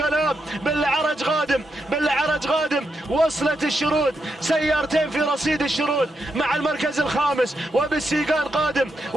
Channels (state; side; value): normal; both; correlation 0.83